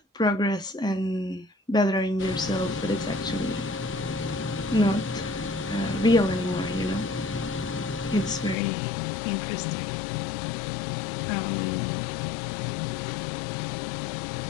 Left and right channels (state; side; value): drops out; right; at 8.6 s